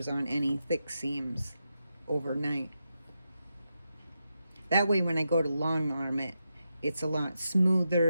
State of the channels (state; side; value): inverted; both; correlation -0.87